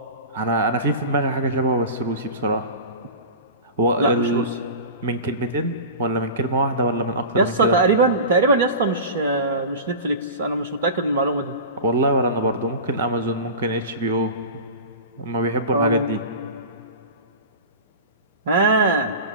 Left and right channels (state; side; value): inverted; both; correlation -0.30